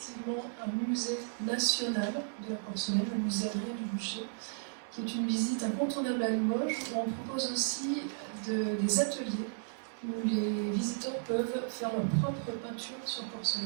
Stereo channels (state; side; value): silent; left; digital silence